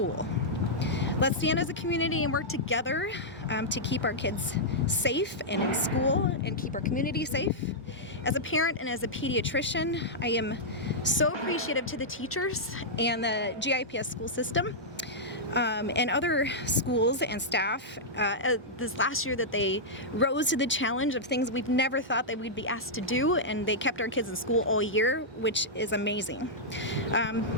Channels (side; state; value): both; normal; correlation -0.09